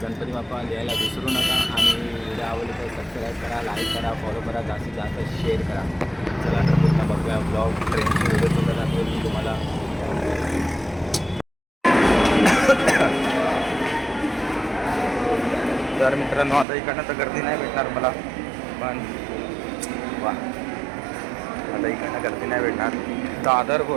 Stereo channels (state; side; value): drops out; left; at 16.7 s